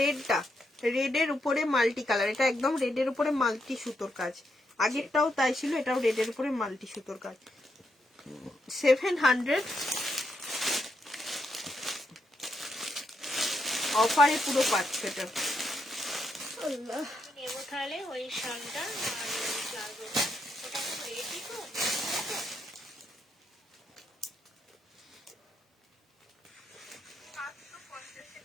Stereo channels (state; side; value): normal; both; correlation 0.80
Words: রেডটা, রেডের উপরে মাল্টি কালার, এটা একদম রেডের উপরে মাল্টি সুতোর কাজ। আগেরটাও তাই ছিল, এটাও রেডের উপরে মাল্টি সুতোর কাজ। 700 অফারে পুরো পাচ্ছ এটা। আল্লাহ, নেবো তাহলে ওই শালটা আর ওই প্লাজোটা, ওটা তো রেডি তো।